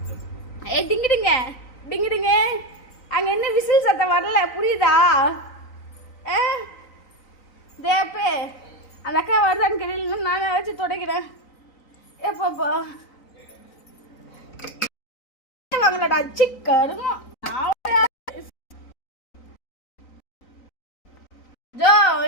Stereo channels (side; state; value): right; late; 3.9 ms